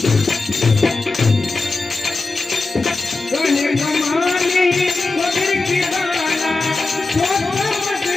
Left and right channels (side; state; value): right; quieter; 3.6 dB